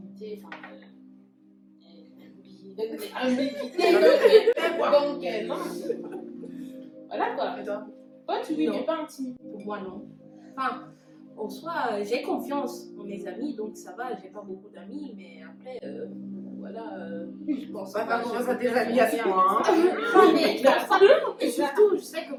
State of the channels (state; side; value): identical; both; correlation 1.00